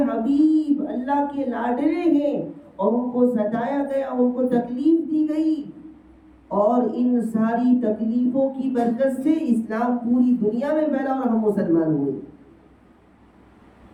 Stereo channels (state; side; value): identical; both; correlation 1.00